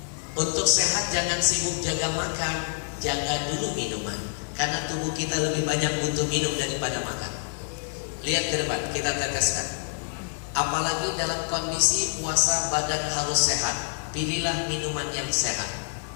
untuk sehat jangan sibuk jaga makan, jaga dulu minuman. Karena tubuh kita lebih banyak butuh minum daripada makan. Lihat ke depan, kita teteskan. Apalagi dalam kondisi puasa, badan harus sehat. Pilihlah minuman yang sehat.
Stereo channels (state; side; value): silent; right; digital silence